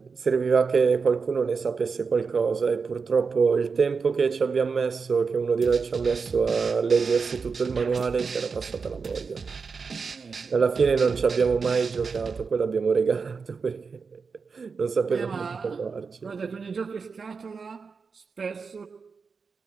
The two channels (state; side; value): quieter; left; 5.2 dB